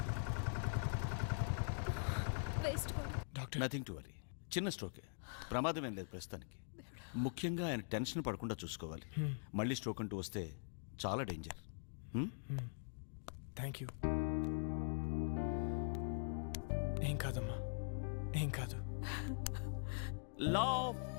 Waste doctor nothing to worry. చిన్న స్ట్రోకే, ప్రమాదం ఏం లేదు ప్రస్తుతానికి. ముఖ్యంగా ఆయన టెన్షన్ పడకుండా చూసుకోవాలి. మళ్ళీ స్ట్రోక్ అంటూ వస్తే చాలా డేంజర్. Thank you. ఏం కాదమ్మా, ఏం కాదు. Law of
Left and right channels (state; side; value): silent; right; digital silence